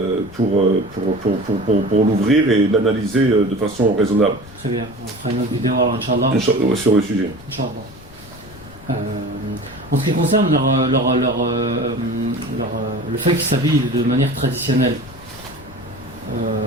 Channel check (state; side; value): noise; left; rumble, 20 dB below the sound